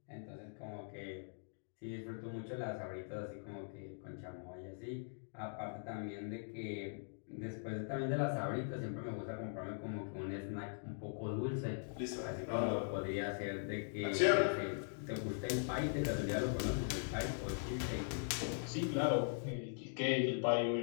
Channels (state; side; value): silent; right; digital silence